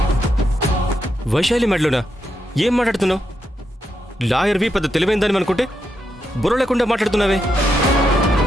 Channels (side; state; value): both; normal; correlation 0.83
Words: వైశాలి మెడలోనా? ఏం మాట్లాడుతున్నావు? లాయర్వి పెద్ద తెలివైందని అనుకుంటే బుర్ర లేకుండా మాట్లాడుతున్నావే.